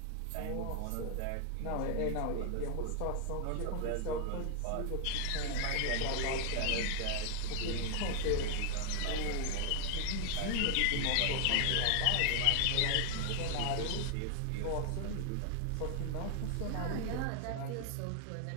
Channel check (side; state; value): both; different; correlation 0.00